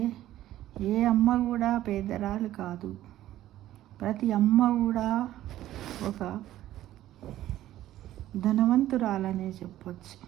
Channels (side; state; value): left; quieter; 13.7 dB